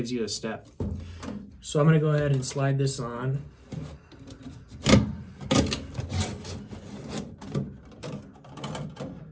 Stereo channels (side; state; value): both; identical; correlation 1.00